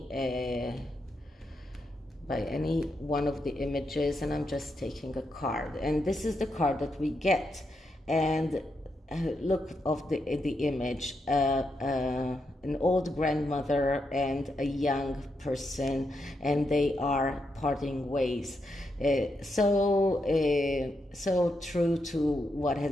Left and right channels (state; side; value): normal; both; correlation 0.83